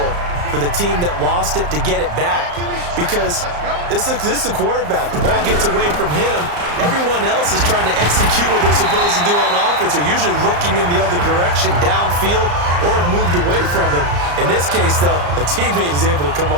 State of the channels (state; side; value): late; left; 34 ms